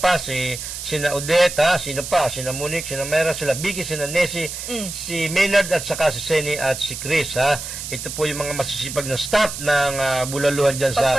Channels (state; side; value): noise; right; hiss, 8 dB below the sound